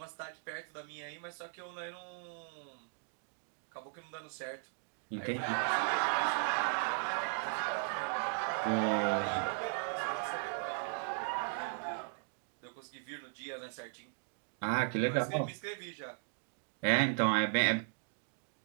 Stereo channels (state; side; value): silent; left; 53 dB below the other